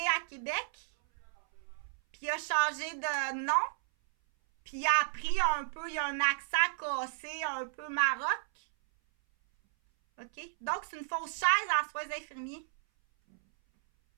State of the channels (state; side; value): silent; left; 56 dB below the other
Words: à Québec. Puis il a changé de nom. Puis il a appris un peu, il a un accent cassé, un peu maroc. OK? Donc, c'est une fausse chaise en soins infirmiers.